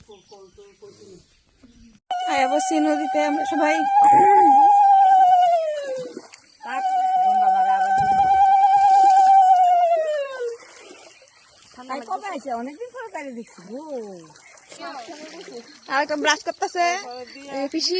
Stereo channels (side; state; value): both; identical; correlation 1.00